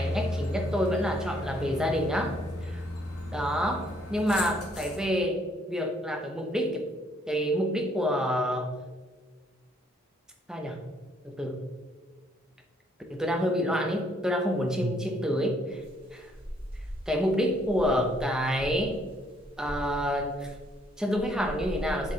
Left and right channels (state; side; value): normal; both; correlation 0.67